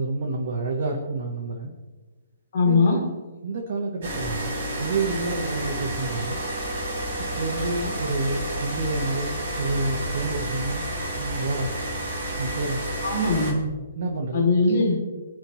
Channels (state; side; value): inverted; both; correlation -0.62